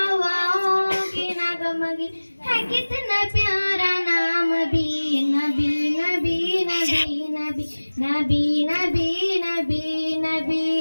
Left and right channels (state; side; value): inverted; both; correlation -1.00